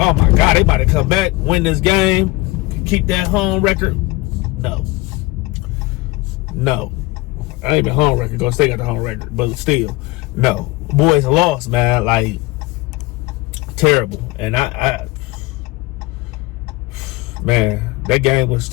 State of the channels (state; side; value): quieter; right; 21.1 dB